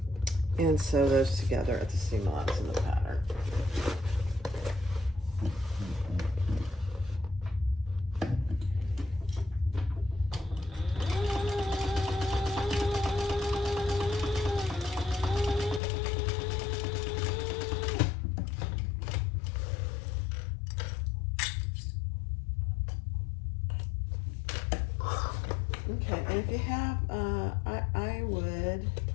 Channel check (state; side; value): drops out; right; at 15.8 s